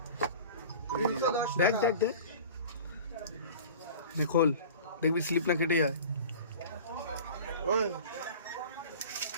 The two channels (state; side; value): inverted; both; correlation -0.39